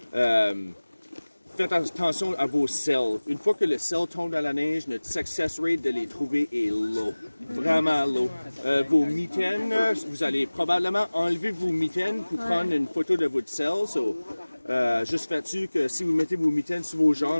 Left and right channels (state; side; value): inverted; both; correlation -1.00